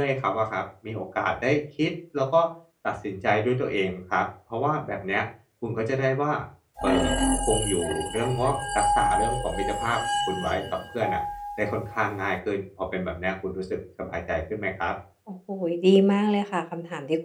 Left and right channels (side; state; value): both; identical; correlation 1.00